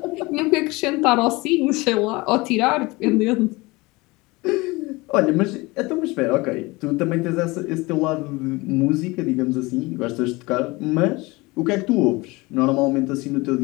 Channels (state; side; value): quieter; right; 23.2 dB